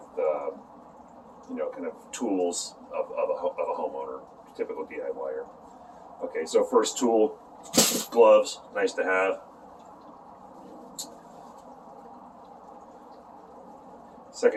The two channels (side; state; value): both; identical; correlation 1.00